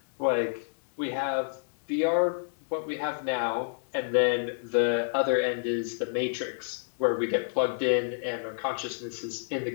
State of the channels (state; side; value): silent; right; digital silence